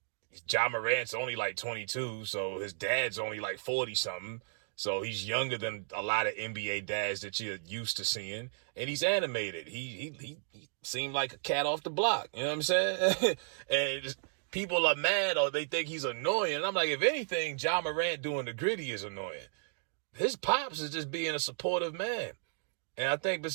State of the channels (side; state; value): left; silent; digital silence